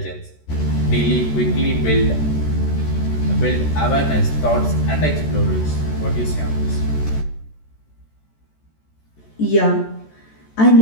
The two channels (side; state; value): right; late; 14 ms